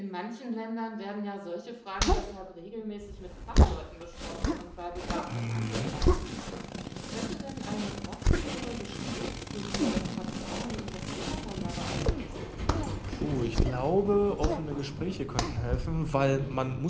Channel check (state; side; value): identical; both; correlation 1.00